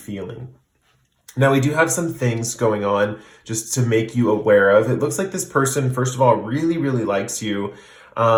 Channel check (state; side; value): identical; both; correlation 1.00